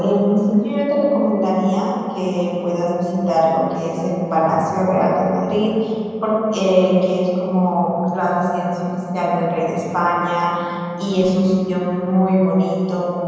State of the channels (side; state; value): both; identical; correlation 1.00